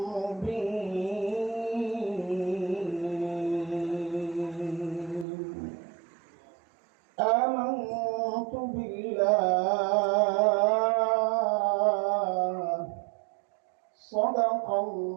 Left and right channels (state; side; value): drops out; left; at 5.2 s